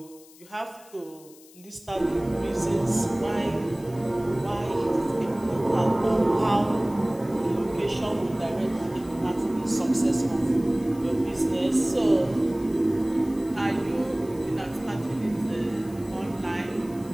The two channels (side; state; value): left; noise; hiss, 24 dB below the sound